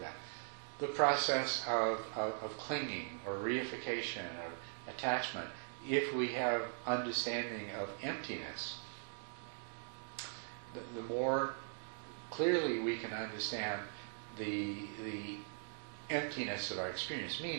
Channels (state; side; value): silent; left; digital silence